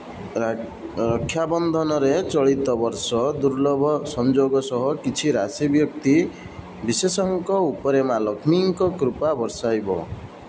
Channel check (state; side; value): identical; both; correlation 1.00